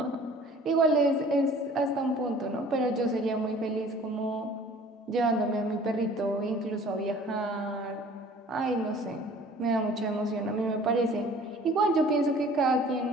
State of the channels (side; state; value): both; normal; correlation 0.50